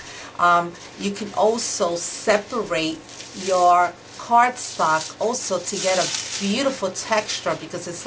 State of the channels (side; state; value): both; identical; correlation 1.00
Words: You can also separate your cardstock also to get a beautiful texture, because it's